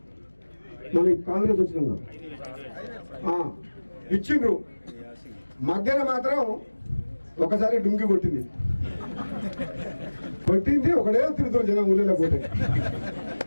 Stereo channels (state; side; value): inverted; both; correlation -1.00